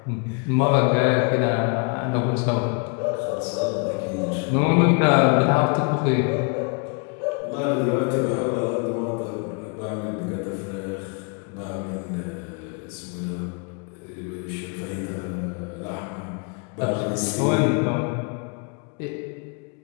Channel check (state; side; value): quieter; right; 37.7 dB